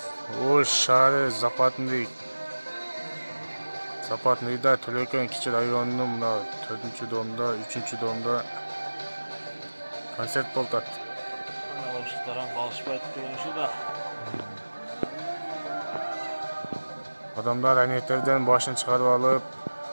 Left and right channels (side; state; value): both; inverted; correlation -1.00